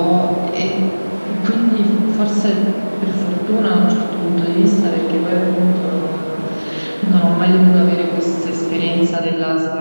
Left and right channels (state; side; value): inverted; both; correlation -1.00